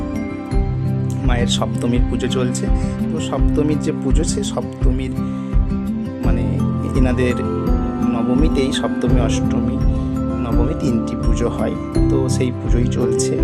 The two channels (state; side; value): identical; both; correlation 1.00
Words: মায়ের সপ্তমীর পুজো চলছে। তো সপ্তমীর যে পুজো, সে সপ্তমীর মানে এনাদের নবমীতেই সপ্তমী, অষ্টমী, নবমী তিনটি পুজো হয়। তো সেই পুজোই চলছে,